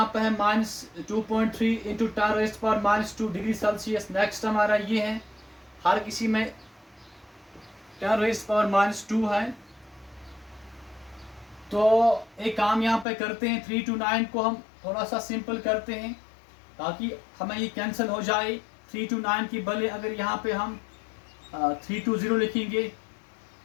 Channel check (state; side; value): drops out; right; at 13.1 s